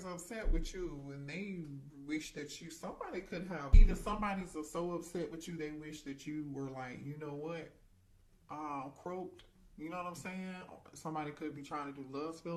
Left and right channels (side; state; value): both; identical; correlation 1.00